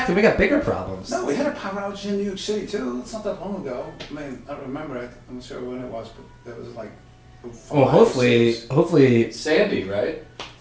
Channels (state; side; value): identical; both; correlation 1.00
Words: Then we got bigger problems. No, we had a power outage in New York City too. It's not that long ago. I mean, I don't remember it. I'm not sure when it was, but it was like. Well, hopefully, Sandy, right?